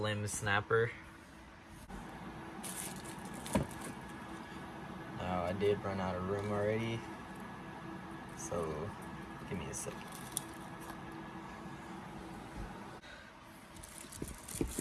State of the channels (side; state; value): both; identical; correlation 1.00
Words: Snapper. Now I did run out of room already, so give me a second.